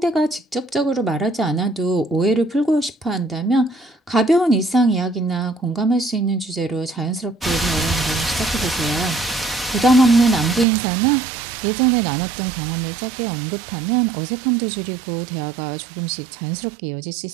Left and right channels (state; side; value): drops out; left; at 10.7 s